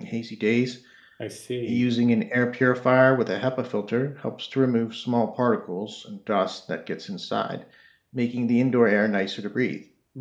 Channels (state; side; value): identical; both; correlation 1.00